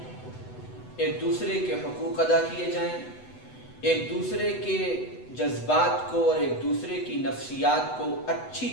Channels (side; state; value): right; late; 8.0 ms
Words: ایک دوسرے کے حقوق ادا کیے جائیں، ایک دوسرے کے جذبات کو اور ایک دوسرے کی نفسیات کو اچھی